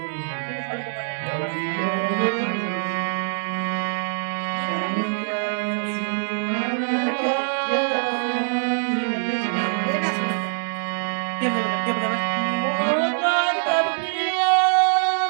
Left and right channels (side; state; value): left; silent; 63 dB below the other